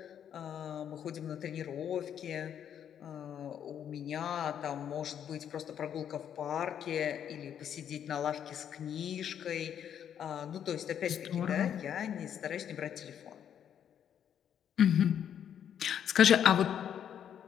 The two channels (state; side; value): quieter; right; 9.1 dB